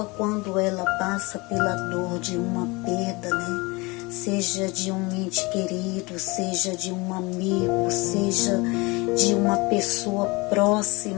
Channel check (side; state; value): right; quieter; 25.3 dB